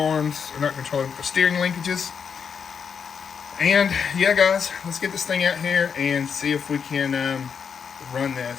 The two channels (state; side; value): quieter; right; 6.7 dB